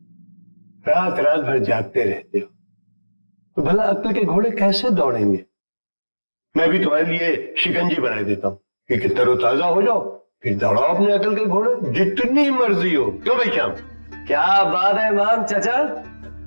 रात रात भर जागते रहते हो तो भला अक्ल के घोड़े कैसे दौड़ेंगे? मैं भी तुम्हारे लिए शिकंजी बना देता हूँ कि तरोताजा हो जाओ, फिर दौड़ाओ अपने अकल के घोड़े जितनी मर्जी हो। क्यों भाई श्याम? क्या बात है इमाम चाचा,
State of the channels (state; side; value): inverted; both; correlation -1.00